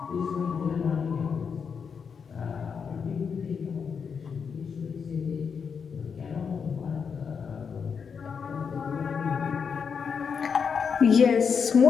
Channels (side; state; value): right; quieter; 6.3 dB